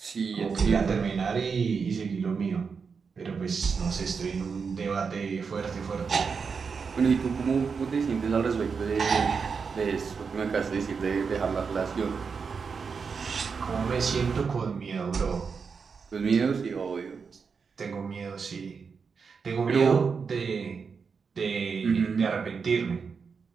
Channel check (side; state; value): left; quieter; 5.6 dB